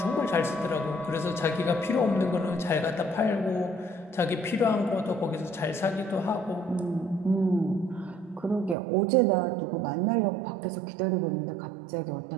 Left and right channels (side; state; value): left; drops out; at 8.8 s